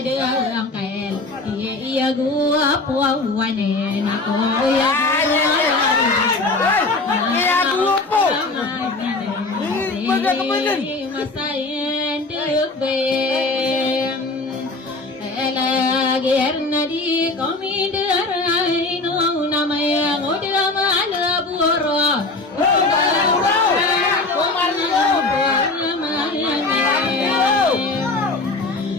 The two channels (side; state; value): right; quieter; 3.2 dB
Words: angkel iya gua puawane aku ya iya gua po masain duk bem Elagerna di komiderai no namanya ngoda mana buro